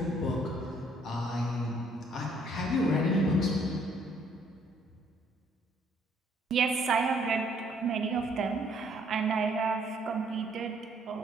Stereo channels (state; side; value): normal; both; correlation 0.65